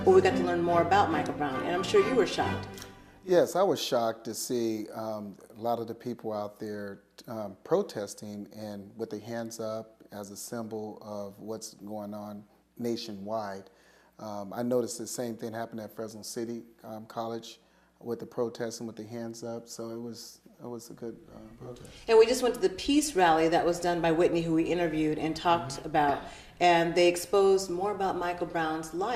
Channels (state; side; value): identical; both; correlation 1.00